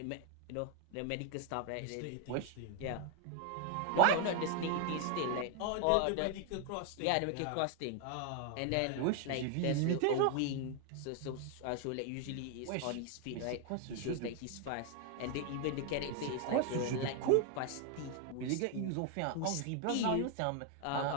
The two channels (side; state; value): both; different; correlation 0.00